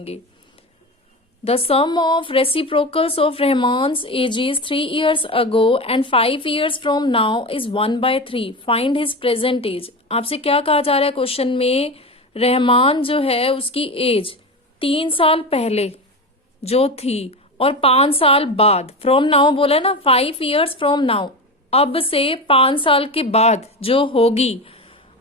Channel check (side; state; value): both; normal; correlation 0.23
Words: The sum of reciprocals of Rahman's ages 3 years ago and 5 years from now is 1/3। Find his present age. आपसे क्या कहा जा रहा है क्वेश्चन में? रहमान जो है उसकी एज 3 साल पहले जो थी और 5 साल बाद, फ्रॉम नाउ बोला ना, 5 years फ्रॉम नाउ, अब से 5 साल के बाद जो होगी